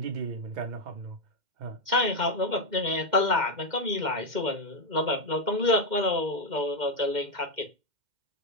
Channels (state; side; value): late; left; 2.1 ms